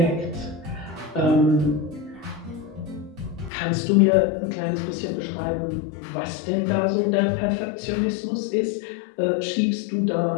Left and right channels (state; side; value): drops out; right; at 3.5 s